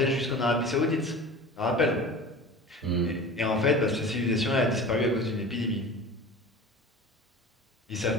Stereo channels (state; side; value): normal; both; correlation 0.37